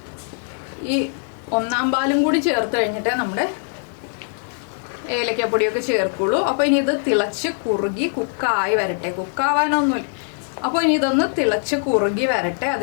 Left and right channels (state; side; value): silent; right; 63 dB below the other